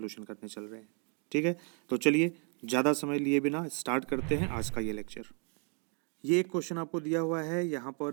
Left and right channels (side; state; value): left; quieter; 39.2 dB